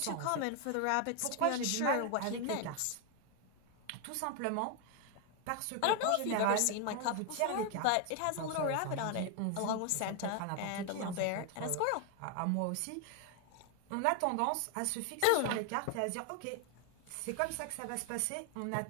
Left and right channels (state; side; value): different; both; correlation 0.01